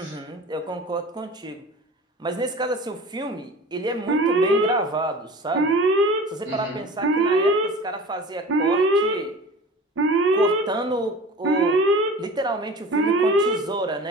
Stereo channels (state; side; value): normal; both; correlation 0.38